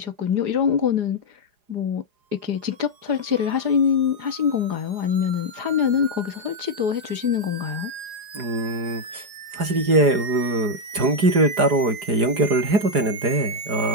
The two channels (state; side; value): late; left; 4.9 ms